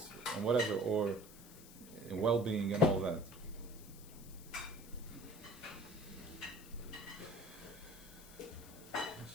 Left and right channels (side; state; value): left; noise; hiss, 18 dB below the sound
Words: whatever, or in well-being and all that.